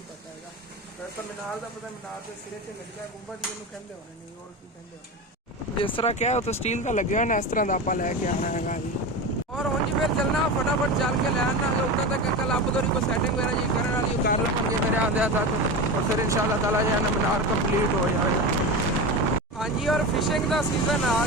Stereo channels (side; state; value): both; normal; correlation 0.24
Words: पता है। वैसे मीनार का पता, मीनार के सिरे से लग गया गुंबद जी कहते होने नहीं और की कहते होने जिस तरह क्या है तो स्टील का लगे हुआ ना इस तरह का आप लैके आना है जी। और हूँ जी फिर चलना फटाफट चल के ले आना उतना तक कल आप तो को सैटिंग वगैरह जी करने वाली कर लेंगे मेरे आंदे तक, और फिर इंशाल्लाह ताला जो है ना मीनार कंप्लीट हो जाएगा। हाँ जी, और फिशिंग का सीजन आ